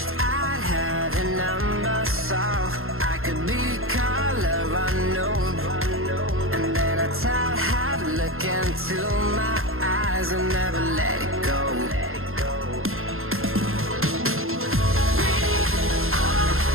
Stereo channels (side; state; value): left; late; 0.61 ms